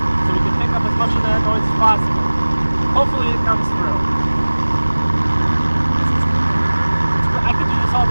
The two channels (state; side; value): inverted; both; correlation -1.00